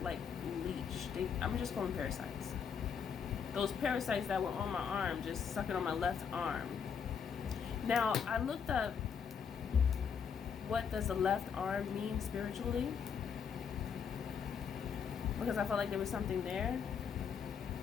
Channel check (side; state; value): right; quieter; 6.9 dB